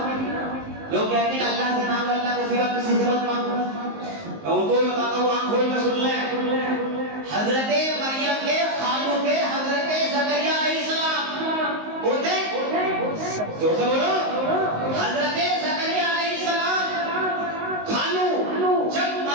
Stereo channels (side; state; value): left; late; 19 ms